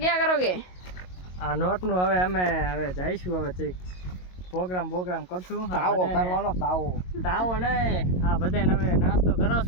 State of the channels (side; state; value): right; late; 22 ms